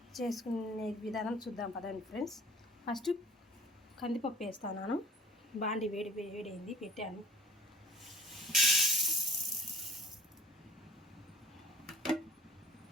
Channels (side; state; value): both; normal; correlation 0.46